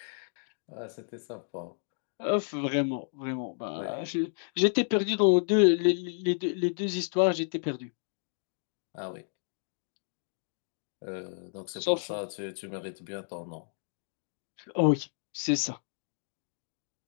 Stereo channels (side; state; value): right; silent; digital silence